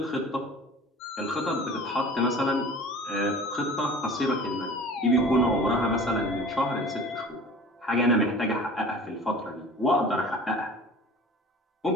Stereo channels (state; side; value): normal; both; correlation 0.43